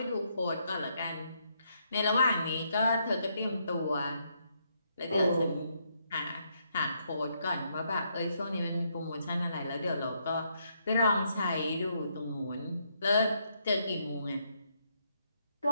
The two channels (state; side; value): inverted; both; correlation -0.75